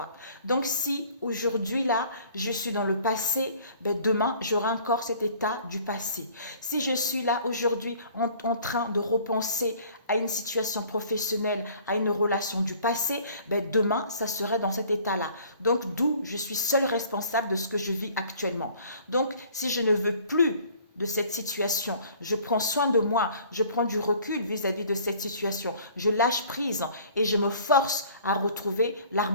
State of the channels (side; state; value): both; inverted; correlation -0.53